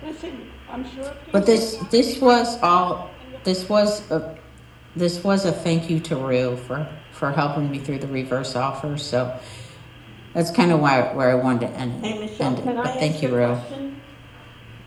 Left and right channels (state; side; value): identical; both; correlation 1.00